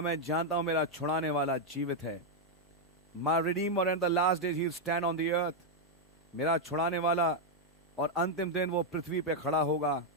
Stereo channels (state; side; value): normal; both; correlation 0.00